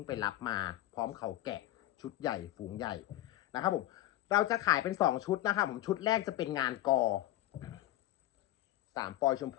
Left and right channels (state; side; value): quieter; right; 14.8 dB